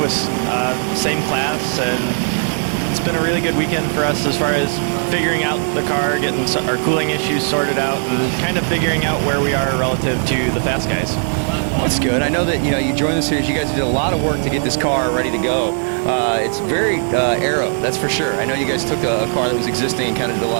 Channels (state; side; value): silent; left; 65 dB below the other